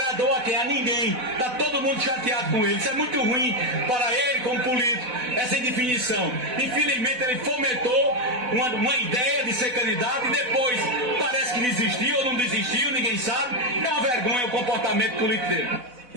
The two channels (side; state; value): left; late; 4.0 ms